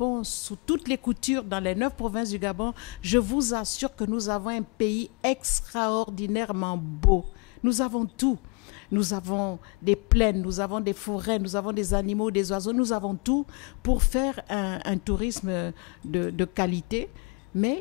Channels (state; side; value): quieter; right; 32.4 dB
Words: sous toutes les coutures dans les 9 provinces du Gabon, je vous assure que nous avons un pays extraordinairement beau. Nous avons tout. nous avons des plaines, nous avons des forêts, nous avons des animaux, des oiseaux, nous avons tout pour faire un tourisme de qualité.